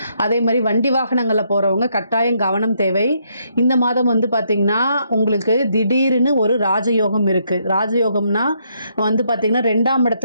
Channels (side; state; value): both; inverted; correlation -0.74